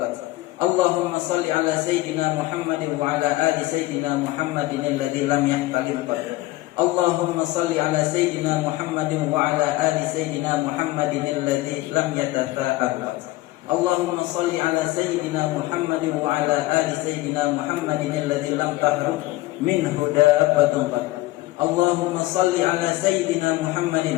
Allahumma salli ala Sayyidina Muhammadin wa ala ali Sayyidina Muhammadin alladhi lam yahtalim qad. Allahumma salli ala Sayyidina Muhammadin wa ala ali Sayyidina Muhammadin alladhi lam yatatha'ab. Allahumma salli ala Sayyidina Muhammadin wa ala ali Sayyidina Muhammadin alladhi lam tahruk minhu dabbatun qad. Allahumma salli ala Sayyidina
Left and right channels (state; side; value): quieter; right; 18.3 dB